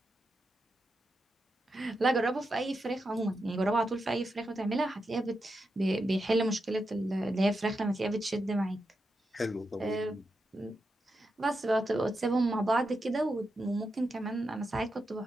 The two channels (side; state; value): both; normal; correlation 0.87